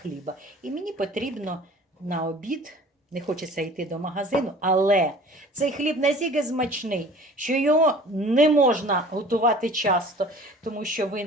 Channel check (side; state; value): both; normal; correlation 0.46